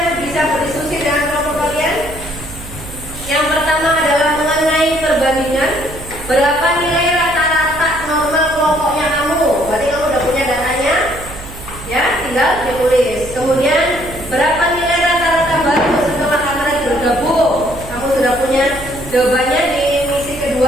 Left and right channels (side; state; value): right; noise; hum, 14 dB below the sound